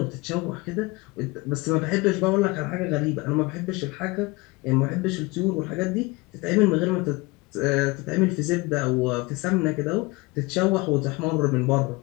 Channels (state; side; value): quieter; right; 24.0 dB